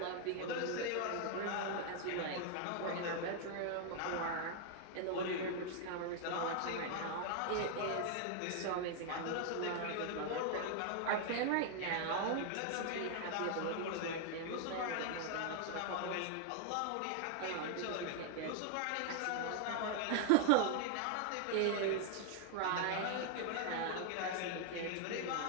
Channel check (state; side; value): different; both; correlation 0.00